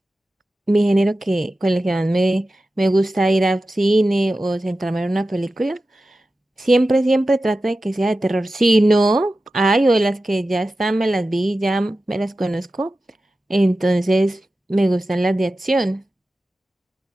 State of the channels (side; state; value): both; normal; correlation 0.94